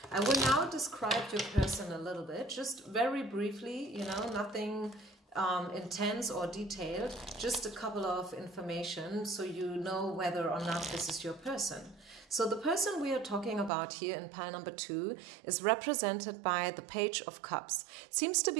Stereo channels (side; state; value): left; drops out; at 13.7 s